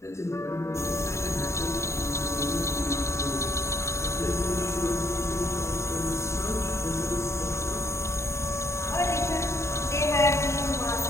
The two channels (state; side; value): late; right; 0.14 ms